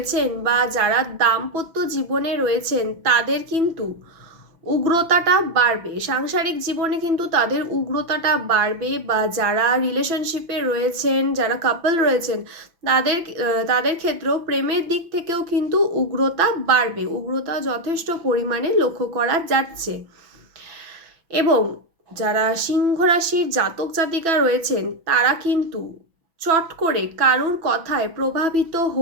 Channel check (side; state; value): left; late; 6.1 ms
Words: বা যারা দাম্পত্য জীবনে রয়েছেন তাদের কিন্তু উগ্রতাটা বাড়বে, সাংসারিক জীবনে কিন্তু তাদের উগ্রতাটা বাড়বে। বা যারা রিলেশনশিপে রয়েছেন, যারা কাপল রয়েছেন তাদের ক্ষেত্রেও প্রেমের দিক থেকেও কিন্তু উগ্রতা বাড়বে, উগ্রতা যথেষ্ট পরিমাণে লক্ষ্য করা যাচ্ছে। এবং যারা সিংহ রাশির জাতক জাতিকা রয়েছেন তারা কিন্তু চট করে কারুর কথায় প্রভাবিত